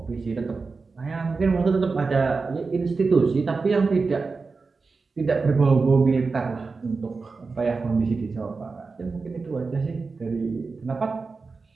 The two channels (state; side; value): quieter; left; 4.3 dB